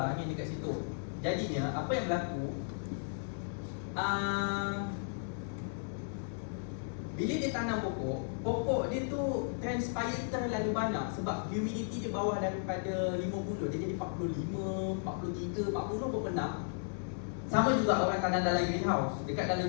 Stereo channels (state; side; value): silent; right; digital silence